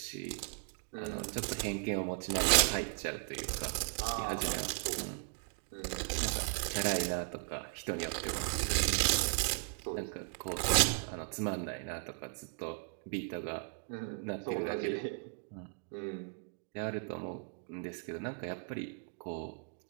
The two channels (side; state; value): left; silent; 53 dB below the other